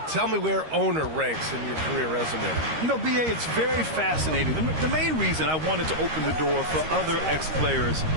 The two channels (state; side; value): late; left; 13 ms